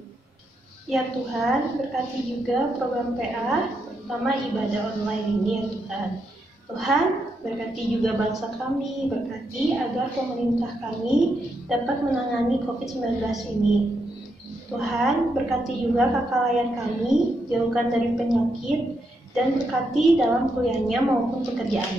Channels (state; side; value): normal; both; correlation 0.81